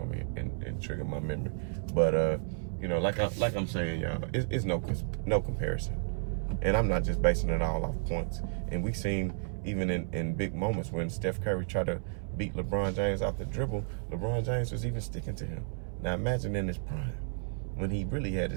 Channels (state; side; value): silent; left; 56 dB below the other